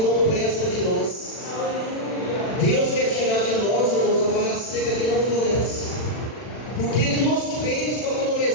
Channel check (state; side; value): late; right; 40 ms